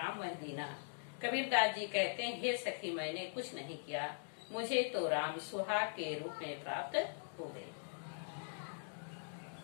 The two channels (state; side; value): silent; right; digital silence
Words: मह दीना। कबीरदास जी कहते हैं, हे सखी मैंने कुछ नहीं किया, मुझे तो राम सुहाग के रूप में प्राप्त हो गए।